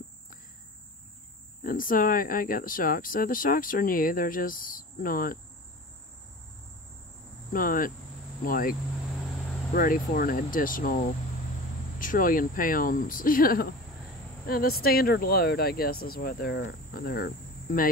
And so I got the shocks. So the shocks are new. They're just not like ready for an additional trillion pounds, you know. And the standard load, I guess, is what they're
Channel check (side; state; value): both; normal; correlation 0.35